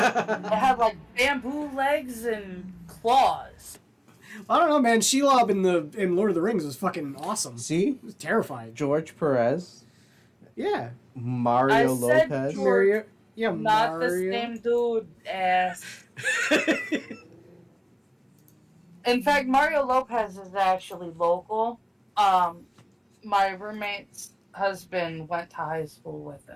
like bamboo legs and claws. I don't know, man. Shelob in Lord of the Rings was fucking awesome. See? It was terrifying. George Perez. Yeah. Mario said Lopez. George. Mario. Yeah, Not Mario. the same dude, ass. In fact, Mario Lopez is actually local. My roommate's husband went to high school with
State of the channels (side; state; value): both; identical; correlation 1.00